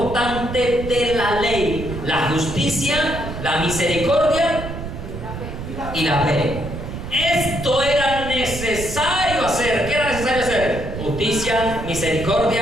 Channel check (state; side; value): noise; right; rumble, 8 dB below the sound